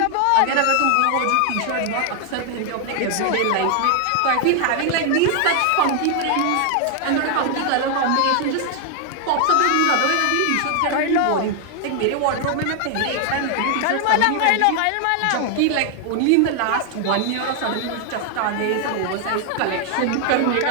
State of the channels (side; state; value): both; different; correlation 0.00